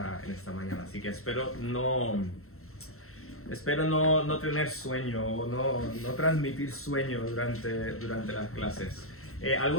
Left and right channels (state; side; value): late; right; 0.63 ms